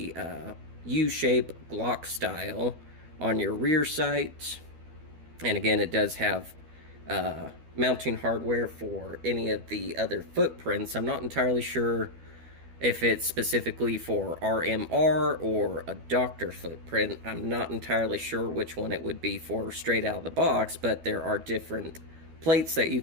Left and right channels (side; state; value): left; late; 12 ms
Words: U-shape Glock style on your rear sight. And again, it does have mounting hardware for any of the other footprints. I'm not entirely sure if it's specifically for RMR or a doctor footprint. I'm not entirely sure which one it would be for straight out of the box, but there are different plates that you